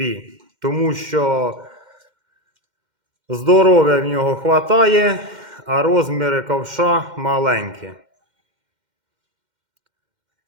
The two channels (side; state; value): left; late; 2.1 ms